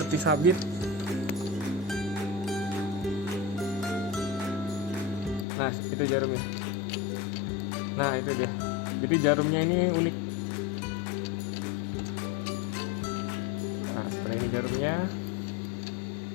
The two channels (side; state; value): right; drops out; at 5.5 s